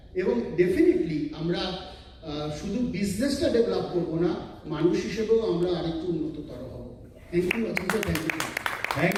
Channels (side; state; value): both; identical; correlation 1.00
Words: এবং ডেফিনেটলি আমরা শুধু বিজনেসটা ডেভেলপ করবো না, মানুষ হিসেবেও আমরা আরেকটু উন্নততর হব। Thank you Achinta,